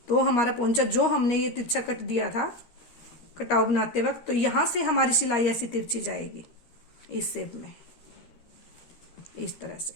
तो हमारा पोंचा जो हमने ये तिरछा कट दिया था कटाव बनाते वक्त, तो यहाँ से हमारी सिलाई ऐसी तिरछी जाएगी इस शेप में इस तरह से,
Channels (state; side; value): late; right; 13 ms